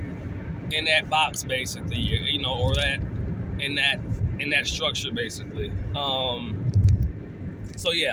in that box, basically, or that in that structure, basically. So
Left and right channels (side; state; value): both; identical; correlation 1.00